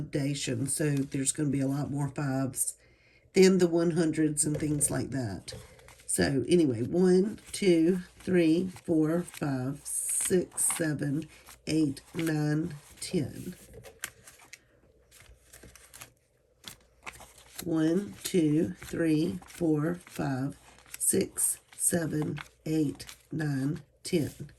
so there's going to be a lot more fives than the 100s and things like that. So anyway, 1, 2, 3, 4, 5, 6, 7, 8, 9, 10. 1, 2, 3, 4, 5, 6, 7, 8, 9, 10.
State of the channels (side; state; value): both; identical; correlation 1.00